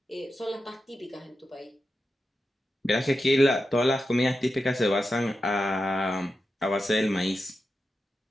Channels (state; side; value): normal; both; correlation 0.90